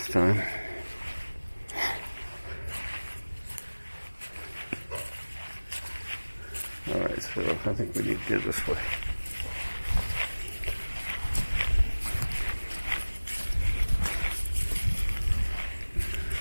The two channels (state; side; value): inverted; both; correlation -1.00